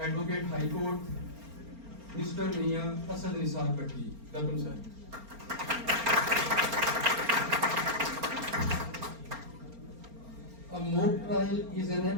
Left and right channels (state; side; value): late; left; 4.3 ms